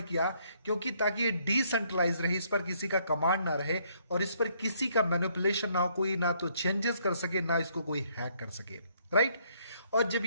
किया? क्योंकि ताकि ये डिसेंट्रलाइज रहे, इस पर किसी का कमांड ना रहे और इस पर किसी का मैनिपुलेशन ना हो, कोई ना तो चेंजेस कर सके ना इसको कोई हैक कर सके, राइट। और जब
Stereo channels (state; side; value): inverted; both; correlation -0.68